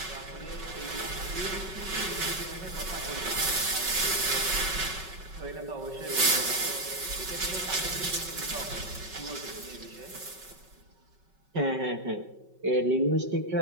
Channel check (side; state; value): left; late; 5.3 ms